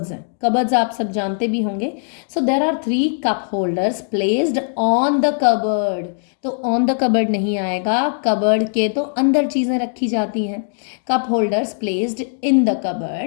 हैं, कबर्ड्स आप सब जानते भी होंगे। So there are 3 cup holders placed on the cupboard, तो ऑन द कबर्ड नहीं आएगा, कबर्ड के तो अंदर चीज़ें रखी जाती हैं। Cup holders placed in the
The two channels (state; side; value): silent; right; digital silence